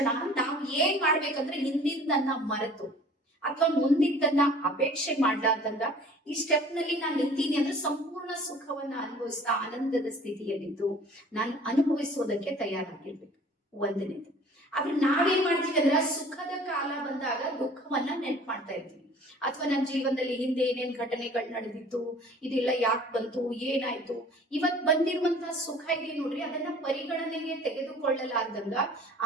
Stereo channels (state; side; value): normal; both; correlation 0.49